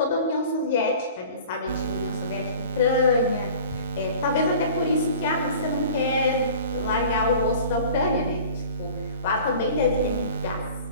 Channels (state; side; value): inverted; both; correlation -0.44